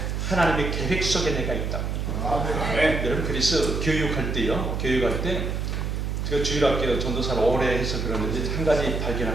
하나님의 계획 속에 내가 있다. 여러분 그래서 교육할 때 제가 주일학교 전도사를 오래 해서 그러는데 한 가지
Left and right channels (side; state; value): right; noise; hum, 2 dB below the sound